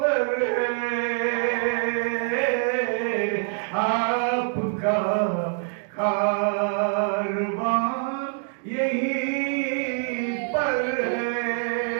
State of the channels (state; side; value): silent; left; 61 dB below the other